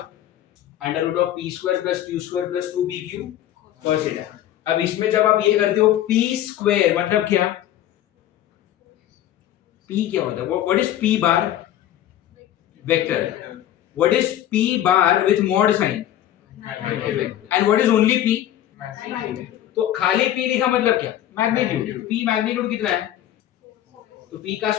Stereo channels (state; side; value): quieter; right; 12.2 dB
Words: under root of p square plus q square plus 2pq cos theta. अब इसमें जब आप ये करते हो p स्क्वायर मतलब क्या, p क्या होता है, what is p bar, vector, what is p bar with mod sine, and what is only p, तो खाली p लिखा मतलब क्या, मैग्नीट्यूड, p मैग्नीट्यूड कितना है, तो p का